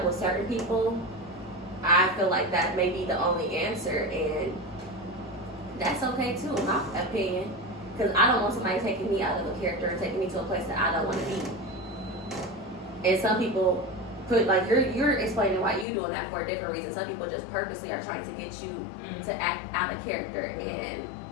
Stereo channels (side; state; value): right; drops out; at 15.9 s